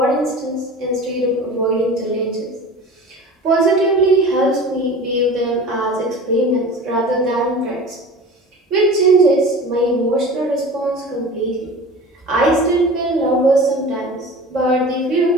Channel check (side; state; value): both; normal; correlation 0.37